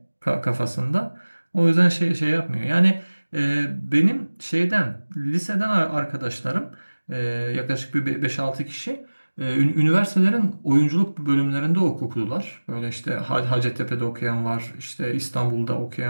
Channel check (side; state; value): both; inverted; correlation -1.00